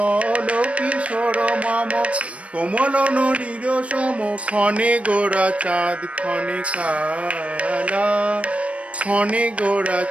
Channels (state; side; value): late; left; 0.063 ms